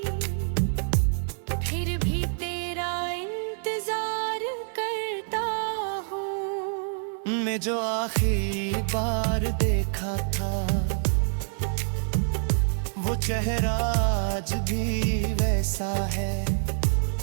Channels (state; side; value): silent; left; digital silence